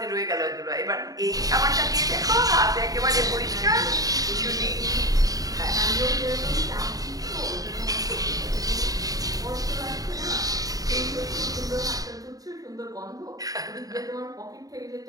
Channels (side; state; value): left; late; 0.18 ms